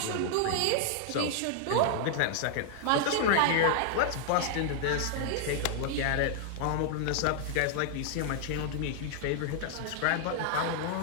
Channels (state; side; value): different; both; correlation 0.00